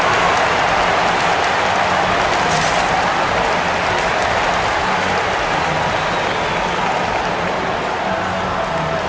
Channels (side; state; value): both; identical; correlation 1.00